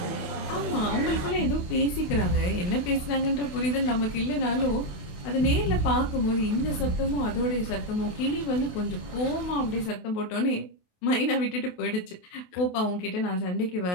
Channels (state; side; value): late; right; 28 ms